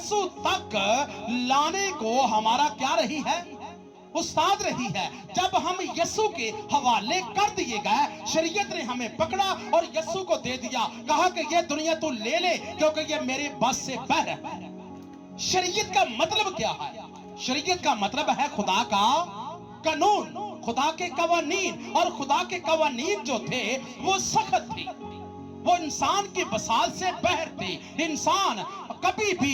तक लाने को हमारा क्या रही है, उस्ताद रही है। जब हम यीशु के हवाले कर दिए गए, शरीयत ने हमें पकड़ा और यीशु को दे दिया, कहा कि ये दुनिया तू ले ले क्योंकि ये मेरे बस से बाहर है। शरीयत का मतलब क्या है? शरीयत का मतलब है खुदा का कानून, खुदा के कवानीन, और खुदा के कवानीन जो थे वो सख्त थे, वो इंसान की बसात से बाहर थे। इंसान कभी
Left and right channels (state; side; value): identical; both; correlation 1.00